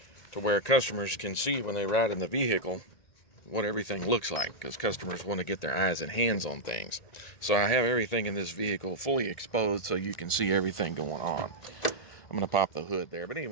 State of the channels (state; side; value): late; right; 1.8 ms